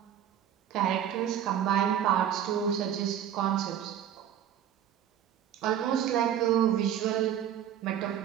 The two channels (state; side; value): quieter; left; 10.0 dB